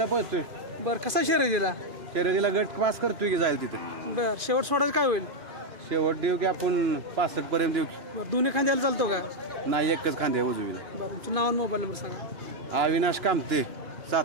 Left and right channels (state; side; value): late; left; 2.5 ms